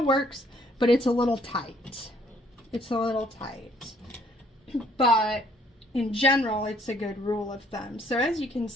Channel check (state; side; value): normal; both; correlation 0.64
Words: works, but it's a little tight. It's a little tight, but in general, it's a good rule of thumb. So as you can